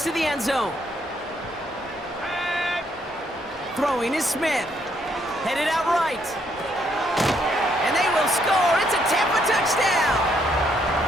to the end zone. Throwing is Smith. Headed out right. And they will score. It's a Tampa touchdown.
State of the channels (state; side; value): normal; both; correlation 0.72